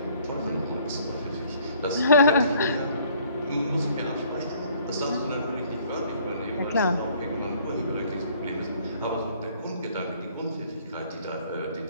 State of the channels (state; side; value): inverted; both; correlation -0.59